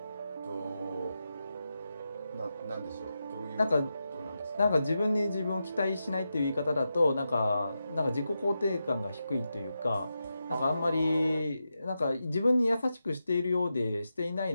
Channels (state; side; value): inverted; both; correlation -0.89